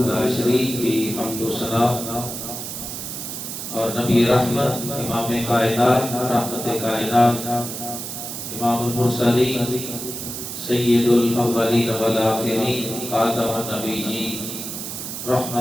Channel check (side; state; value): right; noise; hiss, 7 dB below the sound